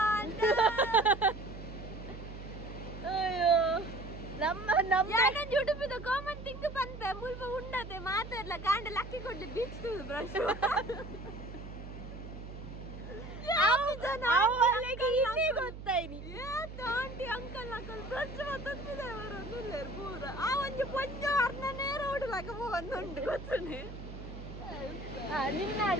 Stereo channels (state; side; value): noise; right; hum, 11 dB below the sound